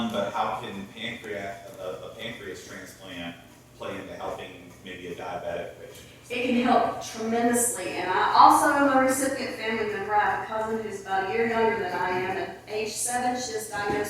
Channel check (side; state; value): both; identical; correlation 1.00